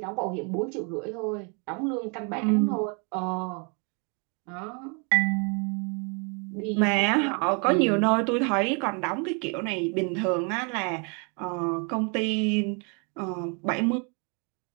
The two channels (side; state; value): left; quieter; 35.3 dB